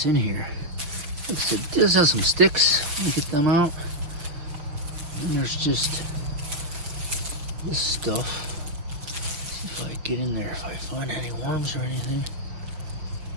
in here. Like I said, this has some sticks. Let me get them out. And there's just this stuff. See if I get in there, if I find any worms or anything.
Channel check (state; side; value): late; left; 6.0 ms